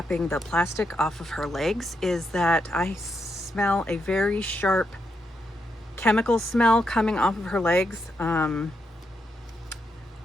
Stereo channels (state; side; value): normal; both; correlation 0.82